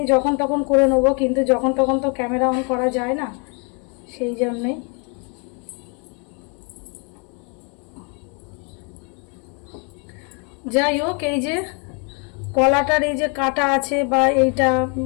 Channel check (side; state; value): right; quieter; 35.7 dB